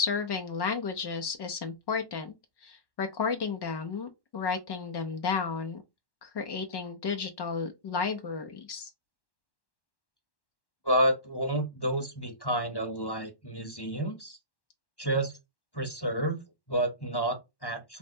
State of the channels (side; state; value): right; late; 1.1 ms